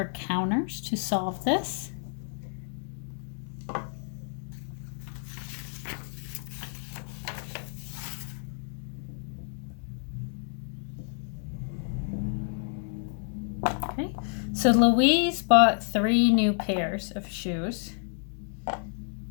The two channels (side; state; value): right; silent; 58 dB below the other